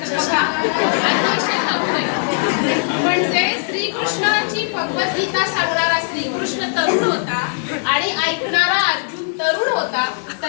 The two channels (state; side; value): silent; right; 61 dB below the other